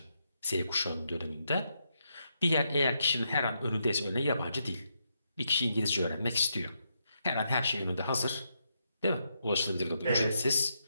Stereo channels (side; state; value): both; inverted; correlation -0.81